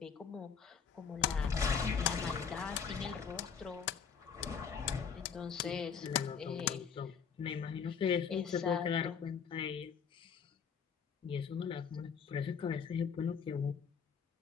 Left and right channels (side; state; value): right; quieter; 6.7 dB